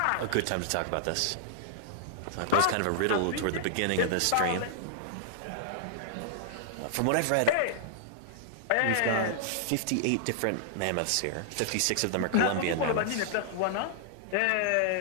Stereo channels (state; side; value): different; both; correlation -0.01